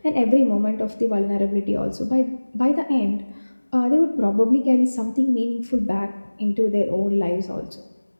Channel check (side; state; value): both; inverted; correlation -1.00